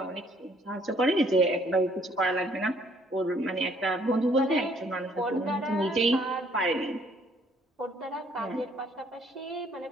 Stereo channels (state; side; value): normal; both; correlation 0.64